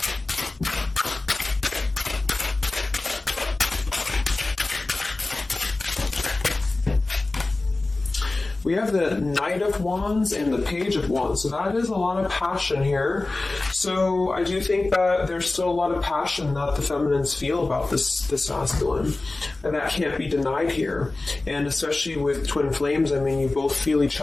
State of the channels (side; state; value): right; quieter; 3.1 dB